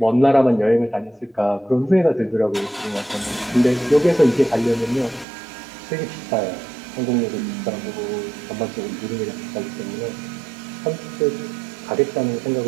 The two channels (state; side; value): drops out; left; at 5.2 s